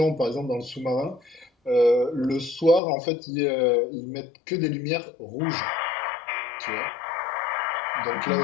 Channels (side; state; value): right; drops out; at 2.8 s